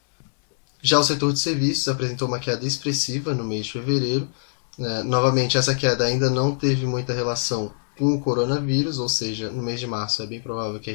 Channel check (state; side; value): silent; right; digital silence